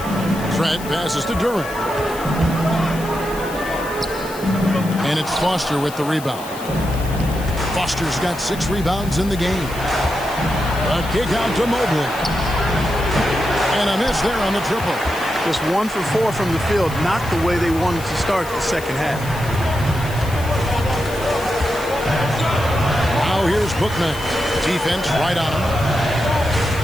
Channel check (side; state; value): left; noise; hiss, 15 dB below the sound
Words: Trent passes to Duran. And it's Foster with the rebound. Foster's got 6 rebounds in the game. A kick out to Mobley. And a miss there on the triple. Just 1 for 4 from the field, not the way they wanted to start the second half. Now here's Bookman. Defense right on him.